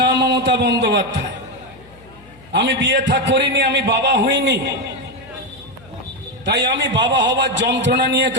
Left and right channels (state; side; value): noise; left; hum, 24 dB below the sound